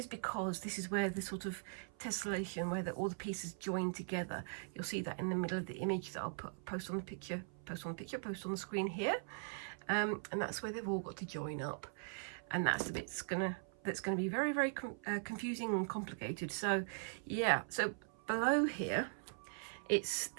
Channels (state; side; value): silent; left; 51 dB below the other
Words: because this is where the sort of tessellation, where all the pieces join together. You'll see that in the middle of the image that I'll post on the screen here, and that's where they've all got to join up, and that's the bit that's gonna be very, very confusing and complicated. So yeah, so below here, it's